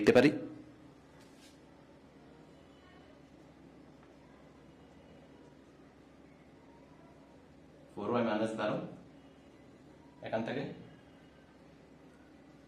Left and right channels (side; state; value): both; identical; correlation 1.00